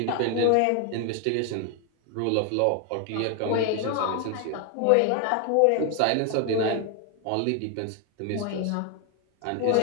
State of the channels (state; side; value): different; both; correlation 0.01